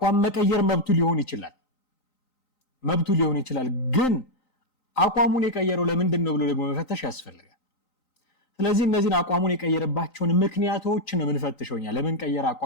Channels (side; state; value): right; late; 3.9 ms